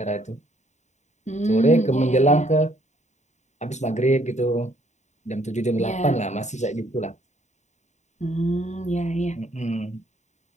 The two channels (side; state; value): right; late; 0.34 ms